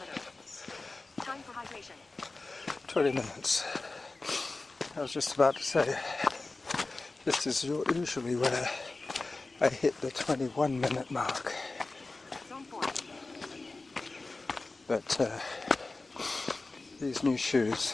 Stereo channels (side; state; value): right; quieter; 3.4 dB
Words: Time for hydration. 20 minutes. I was just about to say, this is usually where I hit the 21-minute mark. Zone 4. But these new shoes